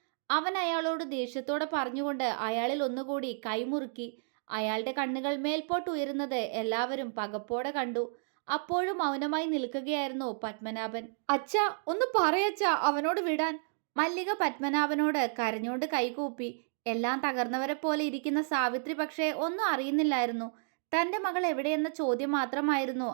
അവൻ അയാളോട് ദേഷ്യത്തോടെ പറഞ്ഞുകൊണ്ട് അയാളിൽ ഒന്നുകൂടി കൈമുറുക്കി. അയാളുടെ കണ്ണുകൾ മേൽപോട്ട് ഉയരുന്നത് എല്ലാവരും പകപ്പോടെ കണ്ടു. അപ്പോഴും മൗനമായി നിൽക്കുകയായിരുന്നു പത്മനാഭൻ. അച്ഛാ, ഒന്ന് പറയച്ചാ അവനോട് വിടാൻ. മല്ലിക പത്മനാഭനോട് കരഞ്ഞോണ്ട് കൈകൂപ്പി. എല്ലാം തകർന്നവരെ പോലെ ഇരിക്കുന്ന സാവിത്രി പക്ഷേ ഒന്നും അറിയുന്നില്ലായിരുന്നു. തന്റെ മകൾ എവിടെയെന്ന ചോദ്യം മാത്രമായിരുന്നു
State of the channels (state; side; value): silent; left; digital silence